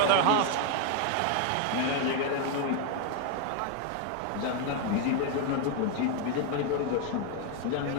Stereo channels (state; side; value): different; both; correlation 0.01